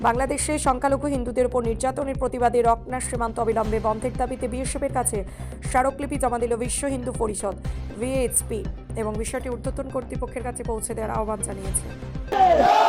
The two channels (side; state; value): both; identical; correlation 1.00